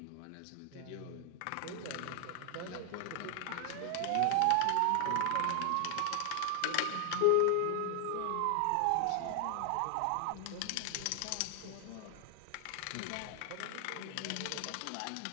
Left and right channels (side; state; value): both; different; correlation 0.00